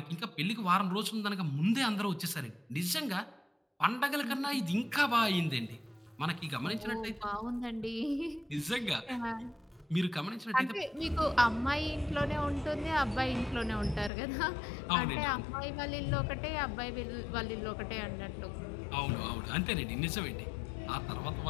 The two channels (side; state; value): right; drops out; at 14.1 s